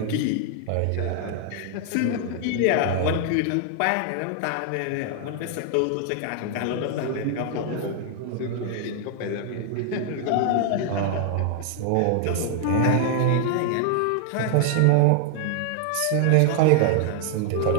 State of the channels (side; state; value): both; different; correlation 0.00